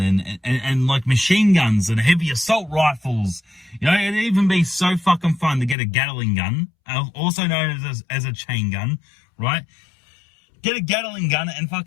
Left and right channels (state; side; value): drops out; right; at 5.8 s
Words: and like machine guns and heavy assault rifles. You know, it'd even be so fucking fun to get a Gatling gun, also known as a chain gun, right? Get a Gatling gun and